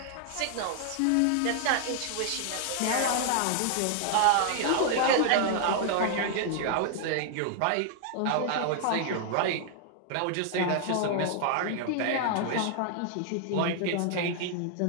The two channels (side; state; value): both; different; correlation 0.00